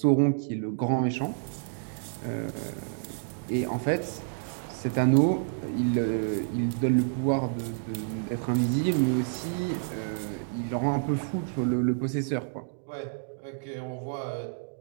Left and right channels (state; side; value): silent; left; digital silence